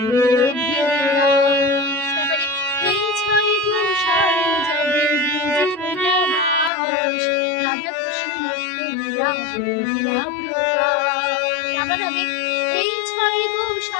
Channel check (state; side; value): drops out; right; at 6.7 s